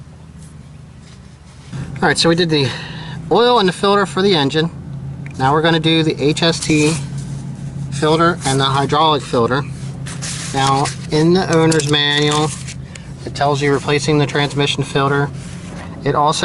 Alright, so we did the oil and the filter for the engine. Now we're going to do the HST filter and the hydraulic filter. Now, in the owner's manual, it tells you replacing the transmission filter. It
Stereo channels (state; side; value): identical; both; correlation 1.00